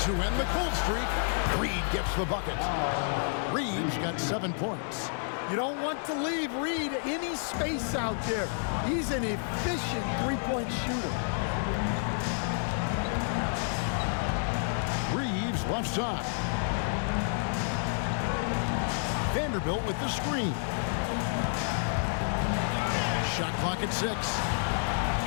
end the cold streak. Reed gets the bucket. Reed's got 7 points. You don't want to leave Reed any space out there. He's an efficient three-point shooter. Reeves left side. Vanderbilt with the screen. Shot clock at 6.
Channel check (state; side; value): silent; right; digital silence